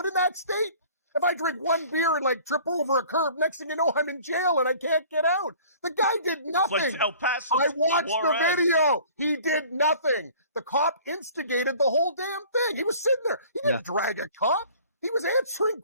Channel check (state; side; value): inverted; both; correlation -0.49